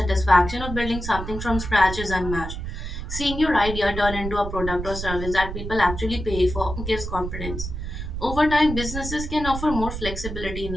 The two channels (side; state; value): right; noise; rumble, 6 dB below the sound